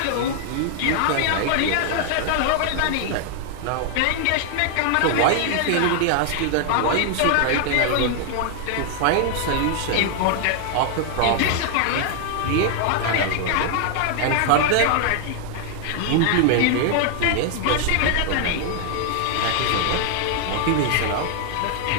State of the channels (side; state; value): both; different; correlation 0.00